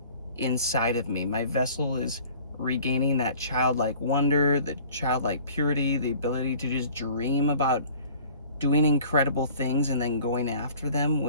inside of me. My vessel is regaining that childlike wonder, the childlike purity, the ability to just dream about doing incredible things and then going after them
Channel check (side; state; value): both; inverted; correlation -0.49